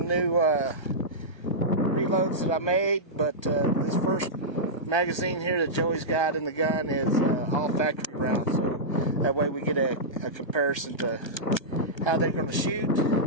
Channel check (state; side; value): late; right; 1.3 ms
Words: new reloads that I made, but this first magazine here that Joey's got in the gun is all factory rounds, so that way we get a comparison to how they're going to shoot